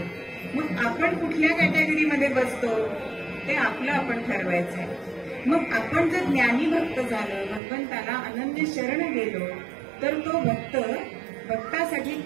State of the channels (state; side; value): drops out; left; at 7.6 s